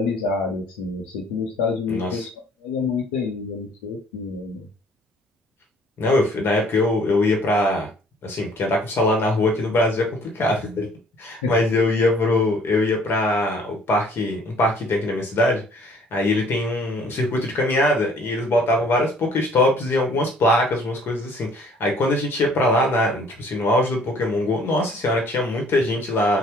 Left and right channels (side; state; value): both; normal; correlation 0.57